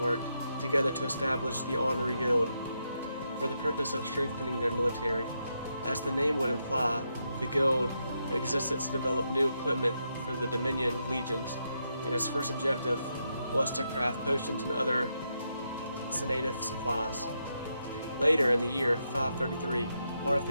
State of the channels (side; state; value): both; inverted; correlation -0.82